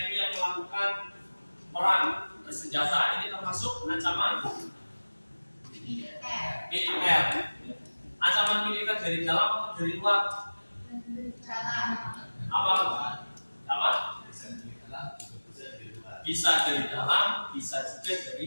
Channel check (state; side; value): inverted; both; correlation -1.00